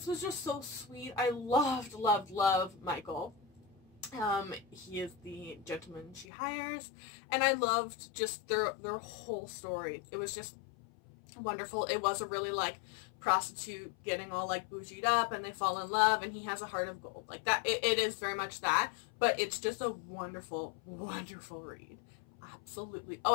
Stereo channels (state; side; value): drops out; right; at 6.2 s